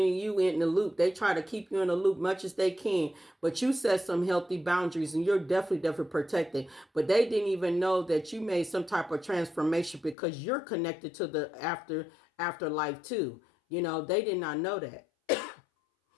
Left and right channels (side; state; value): right; drops out; at 10.2 s